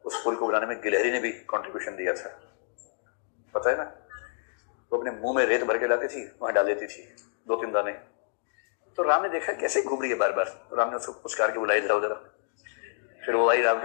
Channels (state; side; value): silent; right; digital silence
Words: उस पुल को बनाने में गिलहरी ने भी कंट्रीब्यूशन दिया था, पता है ना। वो अपने मुंह में रेत भर के लाती थी, वहां डाल देती थी 2-3 दाने। तो राम ने देखा कैसे घूम रही है बार बार, तो राम ने उसको पुचकार के बुलाई, जाओ जरा। फिर वो आई राम